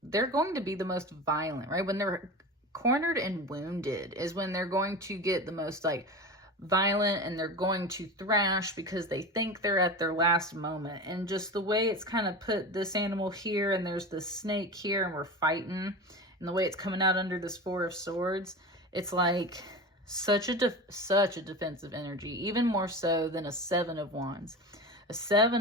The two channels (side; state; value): both; normal; correlation 0.29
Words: they're going to be the most violent, right? When they're cornered and wounded is when they're going to get the most, like, violent, and they're going to thrash because they think they're at their last moment. And just the way it's kind of put this animal here, and there's this snake here, and we're fighting, and the way it's coming out under this 4 of Swords, it's like such a defensive energy, even more so than a 7 of Wands. A